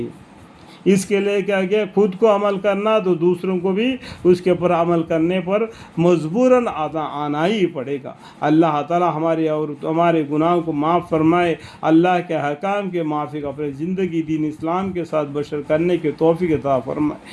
اس کے لیے کیا خود کو عمل کرنا تو دوسروں کو بھی اس کے اوپر عمل کرنے پر مجبوراً آنا ہی پڑے گا۔ اللہ تعالی ہمارے اور ہمارے گناہوں کو معاف فرمائے، اللہ کے حکام کے موافق اپنے زندگی دین اسلام کے ساتھ بشر کرنے کے توفیق عطا فرمائے،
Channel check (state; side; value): identical; both; correlation 1.00